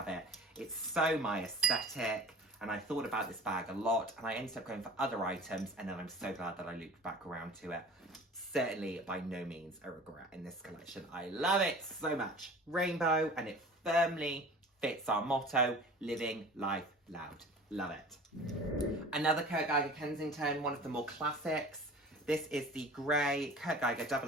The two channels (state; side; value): normal; both; correlation 0.41